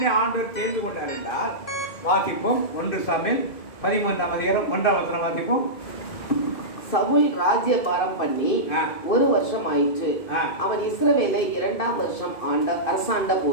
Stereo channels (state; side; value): late; right; 2.5 ms